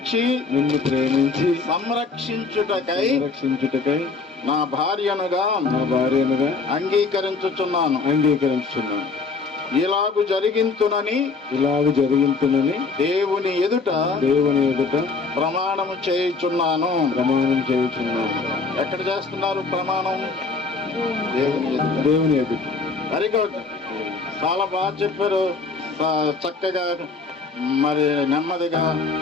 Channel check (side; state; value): right; quieter; 4.3 dB